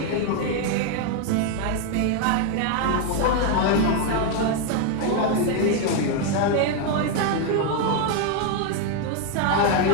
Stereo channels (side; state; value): both; different; correlation 0.01